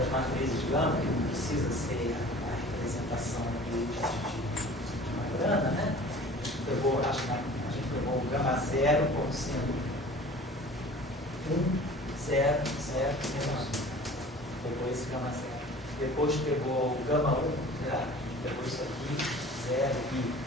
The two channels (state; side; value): normal; both; correlation 0.44